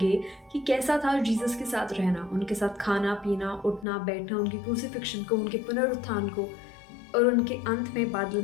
कि कैसा था जीसस के साथ रहना, उनके साथ खाना पीना, उठना बैठना, उनकी क्रूसिफिक्शन को, उनके पुनरुत्थान को और उनके अंत में बादल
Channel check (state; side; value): drops out; right; at 3.9 s